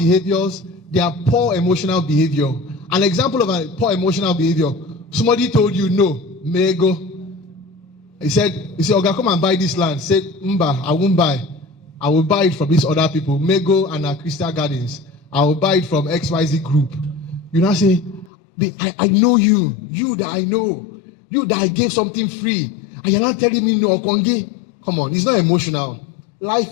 there are poor emotional behavior. An example of a poor emotional behavior, somebody told you no, may go. He said, Oga, come and buy this land. Say, Mba, I won't buy. I will buy it from these other people, Mego and Crystal Gardens. I will buy it from XYZ group. You now say, I know you that I know, you that I gave something free, and you're not telling me no, Kongi. Come on, it's not emotional.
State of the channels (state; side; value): drops out; right; at 18.3 s